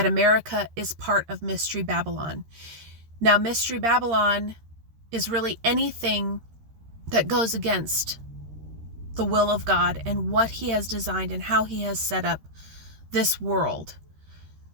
America is part of Mystery Babylon. Now, Mystery Babylon is really anything that goes against the will of God and what he has designed and how he has set up this world.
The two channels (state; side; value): late; left; 13 ms